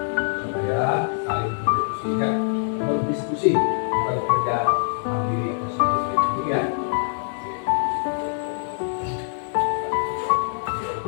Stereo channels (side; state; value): right; silent; digital silence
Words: supaya saling berdiskusi, bukan kerja mandiri atau sendiri ya.